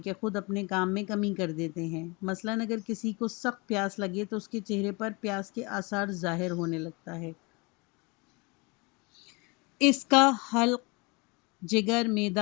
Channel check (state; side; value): quieter; right; 28.2 dB